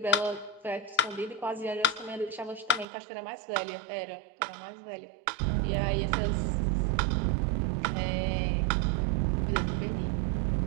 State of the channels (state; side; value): drops out; left; at 2.9 s